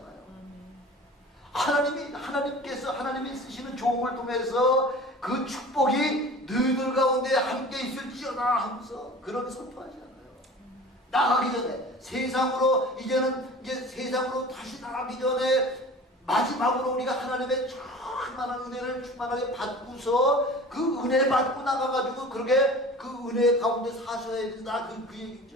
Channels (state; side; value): normal; both; correlation 0.40